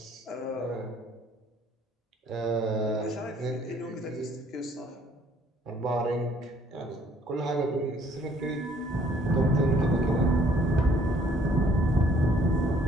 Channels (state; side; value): normal; both; correlation 0.61